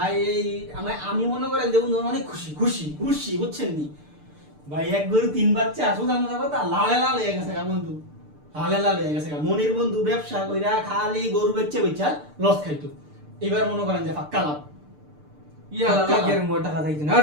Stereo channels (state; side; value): late; left; 6.7 ms